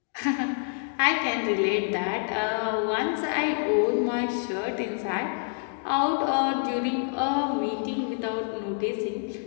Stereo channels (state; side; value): silent; right; 60 dB below the other